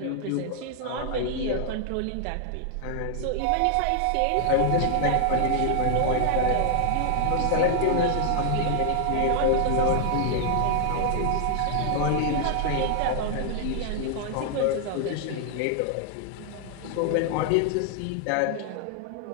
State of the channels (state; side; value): different; both; correlation 0.00